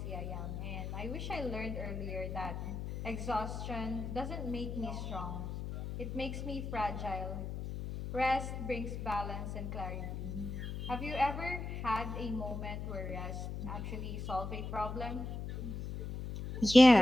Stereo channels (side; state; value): left; noise; hum, 5 dB below the sound